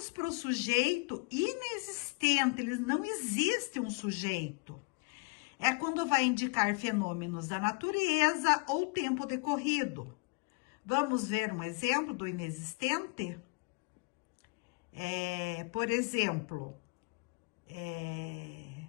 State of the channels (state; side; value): quieter; right; 29.7 dB